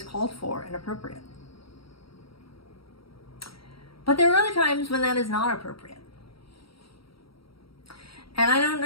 called for and appropriate. But there are other times when that is not appropriate. And I don't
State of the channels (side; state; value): right; late; 0.75 ms